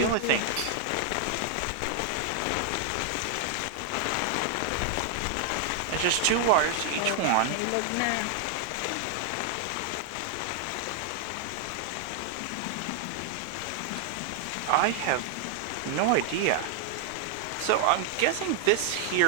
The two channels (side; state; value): both; different; correlation 0.00